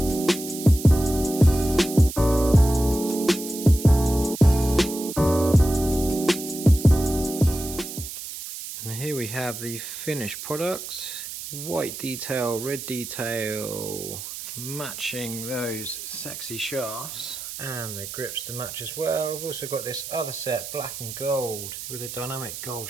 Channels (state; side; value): noise; right; hiss, 9 dB below the sound